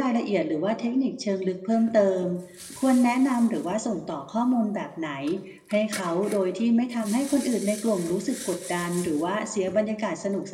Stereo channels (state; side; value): identical; both; correlation 1.00